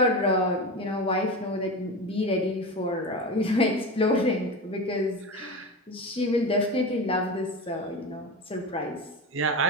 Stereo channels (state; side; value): normal; both; correlation 0.24